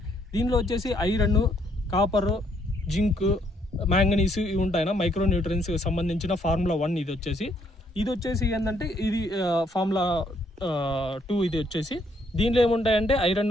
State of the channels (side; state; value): both; normal; correlation 0.70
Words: దీనిలో వచ్చేసి ఐరన్ కాపర్ జింక్ మ్యాంగనీస్ ఇవి ఉంటాయి. మైక్రో న్యూట్రియన్స్ సంబంధించిన ఫార్ములా 1 ఇది వచ్చేసి ఏంటంటే ఇది ఫార్ములా 2 ఇది వచ్చేసి దీనిలో ఏముంటాయంటే